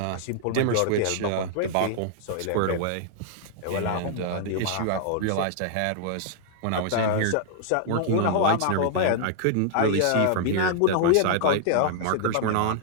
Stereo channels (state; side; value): different; both; correlation -0.01